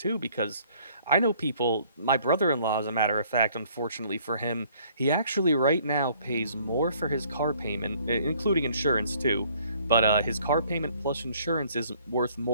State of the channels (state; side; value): inverted; both; correlation -0.60